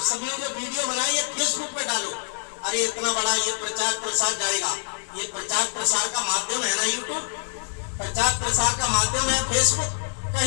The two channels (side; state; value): right; silent; digital silence